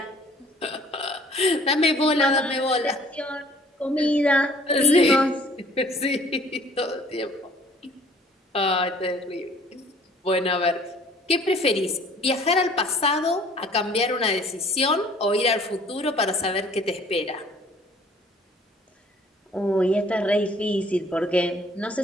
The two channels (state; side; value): normal; both; correlation 0.55